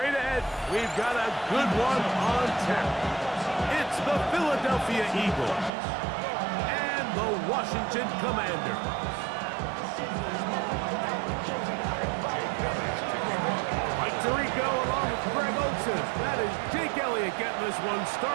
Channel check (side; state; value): left; drops out; at 5.7 s